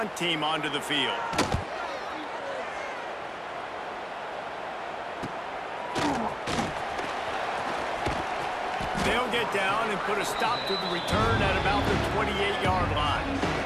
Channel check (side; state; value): both; identical; correlation 1.00